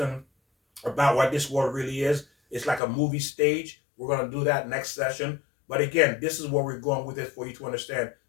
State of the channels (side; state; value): right; drops out; at 2.8 s